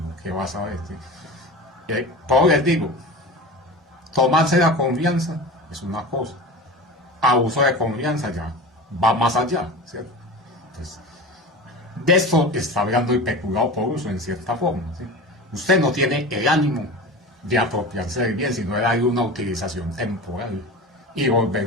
¿qué vas a ver? Por les digo, tomarse la confianza es una cosa, abuso de confianza ya va más allá, ¿cierto? Entonces, de esto está hablando el peculado por uso en cierta forma, ¿sí? Usted no tiene el ánimo de apropiarse del bien, sino de darle una utilización temporal y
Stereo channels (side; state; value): both; normal; correlation 0.31